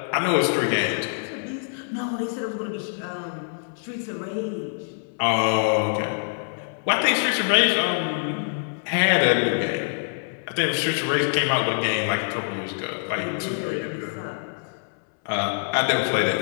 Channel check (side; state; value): right; silent; 62 dB below the other